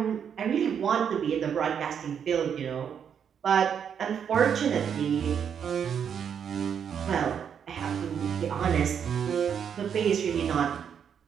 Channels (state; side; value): quieter; left; 7.8 dB